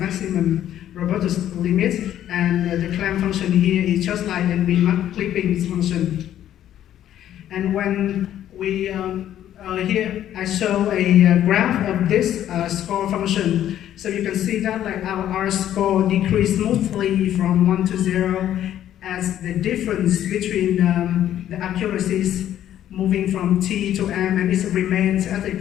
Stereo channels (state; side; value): quieter; right; 11.5 dB